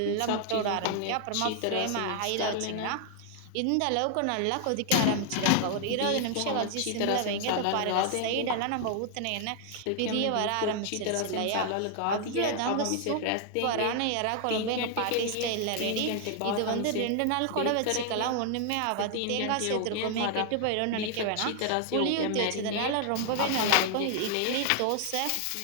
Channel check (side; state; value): both; different; correlation 0.00